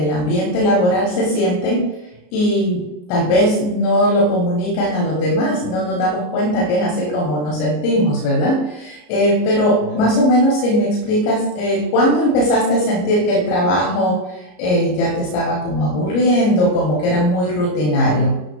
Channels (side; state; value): right; late; 33 ms